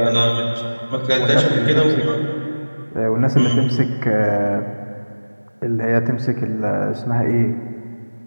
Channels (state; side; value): inverted; both; correlation -1.00